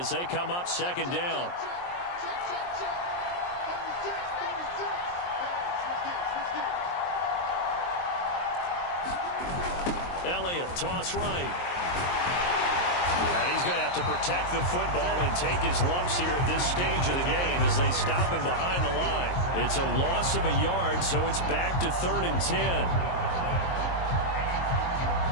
they come up 2nd down. Elliott, toss right. And he's going to have to protect the football and take his lumps here at this stage of the game as they stop him behind the line. It's a loss of a yard, so it's back to 3rd and 10.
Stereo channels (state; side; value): late; right; 23 ms